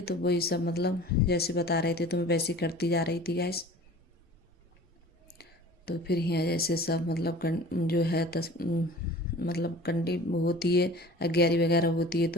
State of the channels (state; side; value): normal; both; correlation 0.43